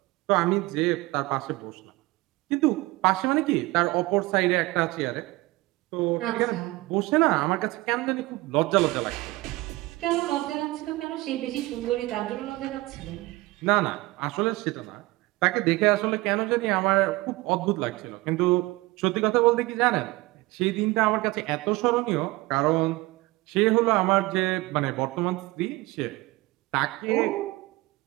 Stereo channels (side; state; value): left; quieter; 20.9 dB